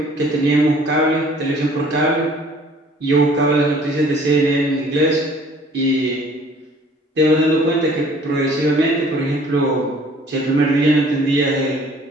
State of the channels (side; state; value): both; normal; correlation 0.54